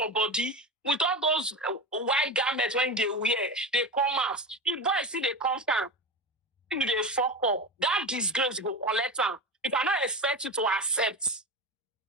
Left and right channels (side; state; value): both; normal; correlation 0.24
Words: body, with all those white garments when they wear, they come out. The boy see they come down. They fuck up. That disgrace go collect them. If I not expect you to accept.